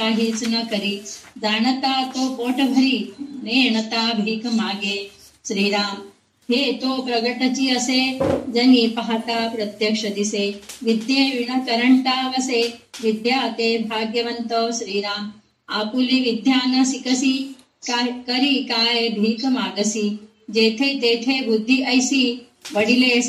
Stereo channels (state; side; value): identical; both; correlation 1.00